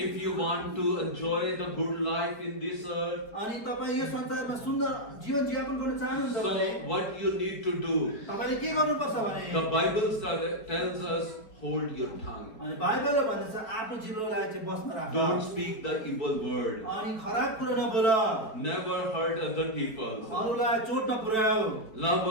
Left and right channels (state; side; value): late; right; 4.3 ms